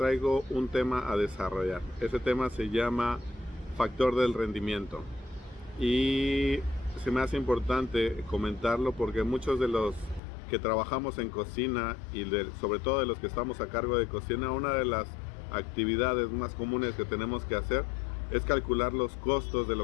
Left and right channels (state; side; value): drops out; right; at 10.2 s